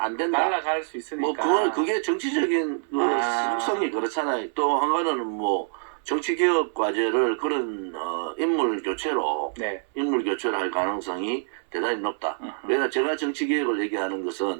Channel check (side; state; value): left; silent; 61 dB below the other